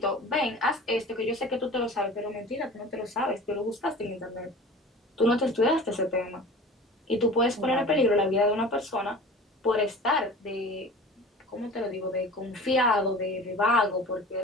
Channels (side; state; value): both; normal; correlation 0.39